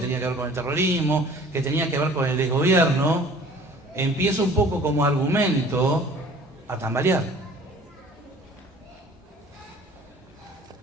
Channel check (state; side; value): normal; both; correlation 0.49